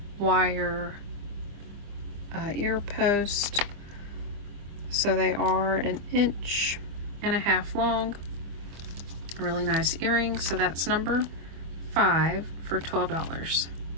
wire ear post. So they are 1.5 inches long. Really nice earrings. So that's number 5 for $12.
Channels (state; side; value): late; left; 25 ms